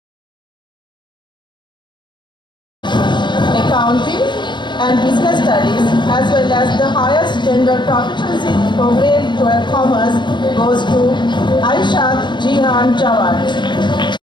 Accounting and Business Studies, as well as the highest general proficiency for grade 12 commerce goes to Aishat Jihan Jawad.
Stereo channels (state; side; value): late; right; 0.22 ms